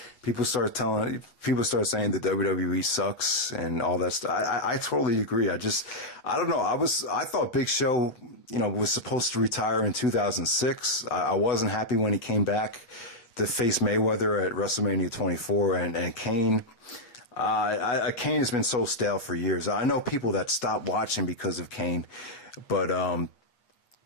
people start saying that WWE sucks and all that stuff. I totally agree. I don't know. I thought Big Show, was supposed to retire in 2006. I wasn't happy when he came back to face Mayweather at WrestleMania 24, and Kane. Kane has been so stale for years. I know people that stopped watching because of Kane, but I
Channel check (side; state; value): right; late; 8.3 ms